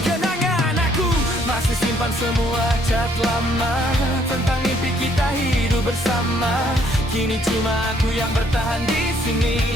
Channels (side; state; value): both; normal; correlation 0.66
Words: kenangan. Aku masih simpan semua chat lama tentang mimpi kita hidup bersama. Kini cuma aku yang bertahan di